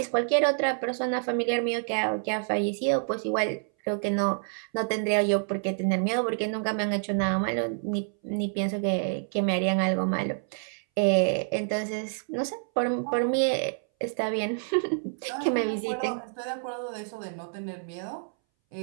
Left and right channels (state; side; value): silent; left; 59 dB below the other